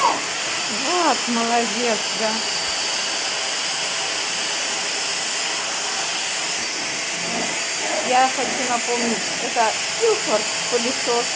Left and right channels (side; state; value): both; identical; correlation 1.00